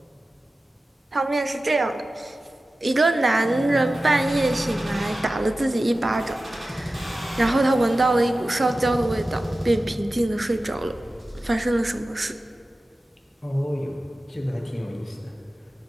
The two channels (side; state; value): both; normal; correlation 0.95